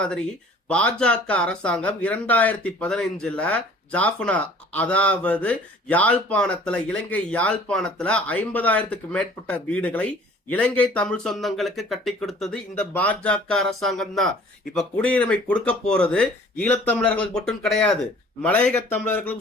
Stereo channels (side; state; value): both; normal; correlation 0.51